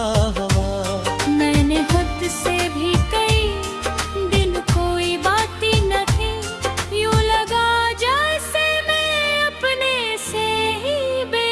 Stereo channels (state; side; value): identical; both; correlation 1.00